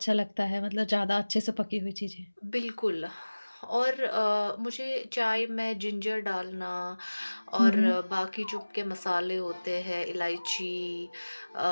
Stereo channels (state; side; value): inverted; both; correlation -1.00